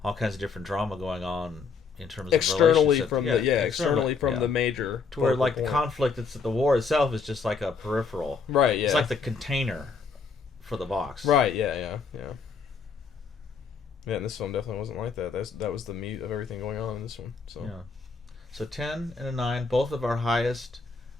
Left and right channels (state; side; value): quieter; right; 5.1 dB